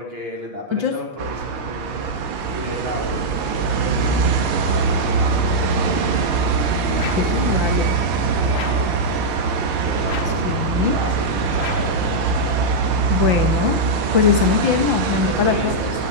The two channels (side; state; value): left; late; 6.6 ms